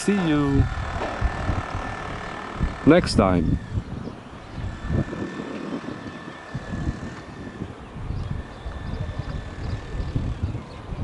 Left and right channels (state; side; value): identical; both; correlation 1.00